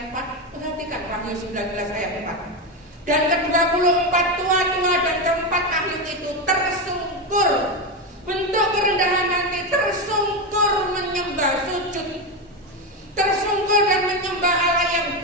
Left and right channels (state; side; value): normal; both; correlation 0.12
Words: 4. Perhatikan Wahyu 19 ayat 4. Dan ke-24 tua-tua dan keempat ahli itu tersungkur, bentuk kerendahan hati, tersungkur menyembah sujud, tersungkur dan menyembah Allah yang